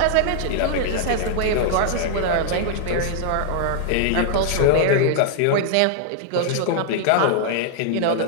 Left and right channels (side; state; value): both; different; correlation -0.01